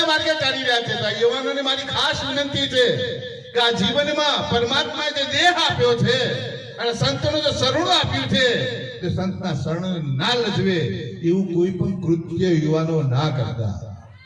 માર્ગે ચાલી રહ્યા છે. તો યુવાનોને મારી ખાસ વિનંતી છે કે આ જીવનમાં પરમાત્માએ જે દેહ આપ્યો છે અને સંતોનું જે શરણું આપ્યું છે, તે સંતના શરણ ના લજવે એવું કોઈ પણ કૃત્ય યુવાનો ના કરતા.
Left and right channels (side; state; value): both; identical; correlation 1.00